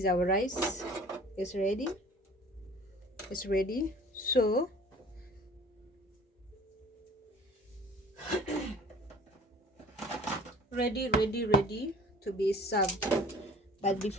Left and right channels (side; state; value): both; normal; correlation 0.47